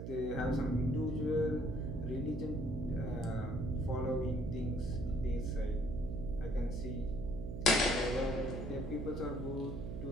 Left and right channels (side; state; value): right; noise; hum, 6 dB below the sound